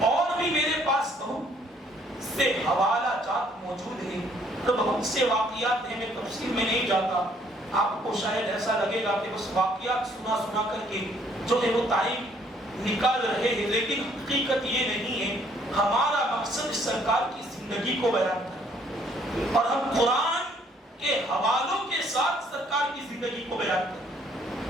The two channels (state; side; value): normal; both; correlation 0.64